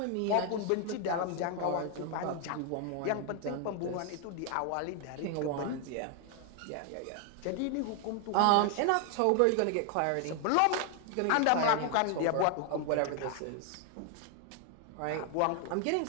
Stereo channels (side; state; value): both; different; correlation 0.00